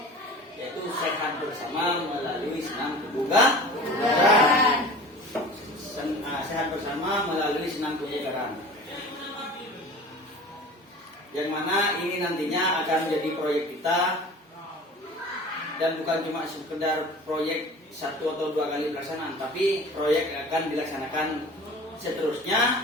Yaitu sehat bersama melalui senam kebugaran. Sehat bersama melalui senam kebugaran. Yang mana ini nantinya akan menjadi proyek kita, dan bukan cuma sekedar proyek 1 atau 2 kali pelaksanaan, tapi proyek akan dilaksanakan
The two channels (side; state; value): both; normal; correlation 0.40